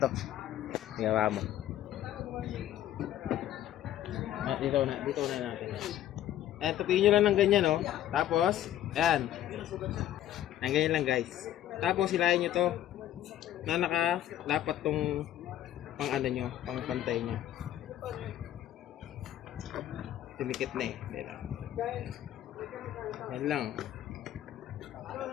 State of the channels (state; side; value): quieter; right; 12.2 dB